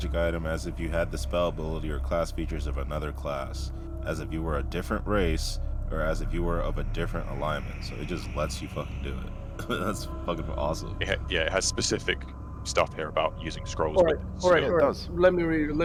item as if you had the spell ability or class features of another class, as if you were a different race, or as if you were of a different alignment. So it just lets you fucking do it. That's fucking awesome. It has specific stuff here about using scrolls. All right, with all right, skill. all it right. does. Let me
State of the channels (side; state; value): both; identical; correlation 1.00